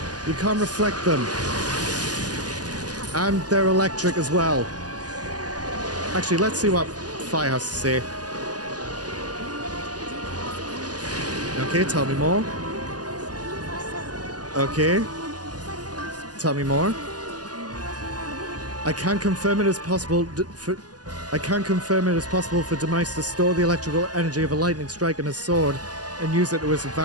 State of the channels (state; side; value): late; left; 0.68 ms